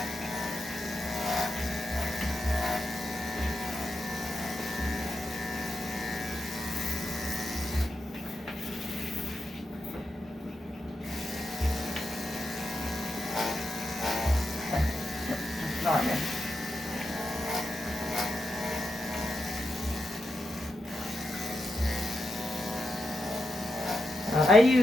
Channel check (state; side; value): normal; both; correlation 0.86